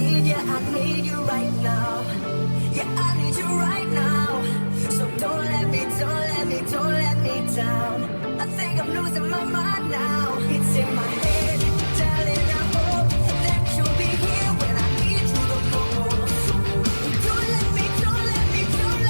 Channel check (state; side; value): inverted; both; correlation -1.00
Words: you, I need you right now. Yeah, I need you right now. So don't let me down. I think I'm losing